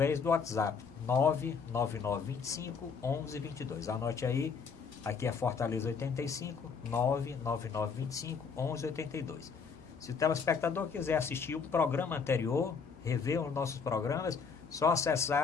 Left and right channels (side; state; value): right; quieter; 5.7 dB